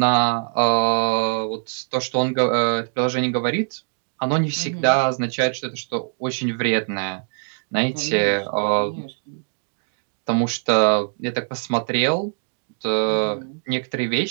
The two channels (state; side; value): silent; left; digital silence